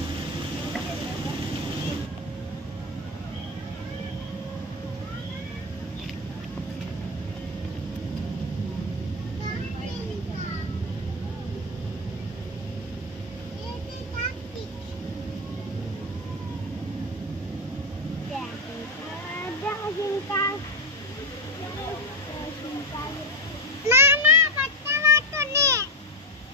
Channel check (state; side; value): normal; both; correlation 0.13